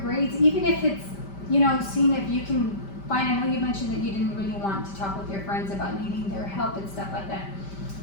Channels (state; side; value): late; right; 5.1 ms